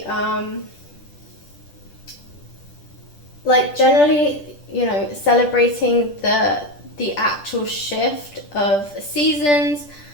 generally, you know, celebrating the actual shift of seasons.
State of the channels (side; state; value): right; late; 10 ms